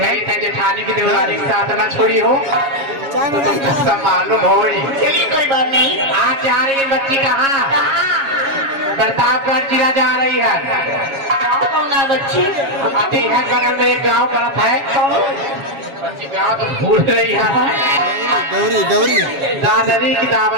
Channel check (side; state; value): left; late; 7.3 ms